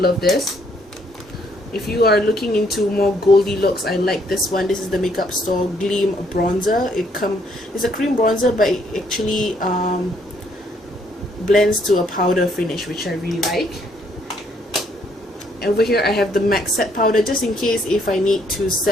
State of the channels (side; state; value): both; normal; correlation 0.68